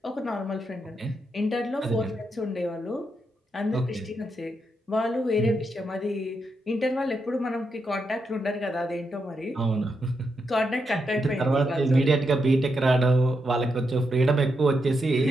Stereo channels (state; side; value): normal; both; correlation 0.83